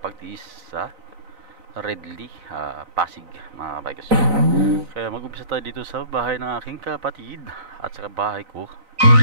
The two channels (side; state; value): left; late; 4.0 ms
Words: sa Redley, Pasig mga bikers. Kaya mag-umpisa tayo dito sa bahay ng aking kapatid at saka bahay ko.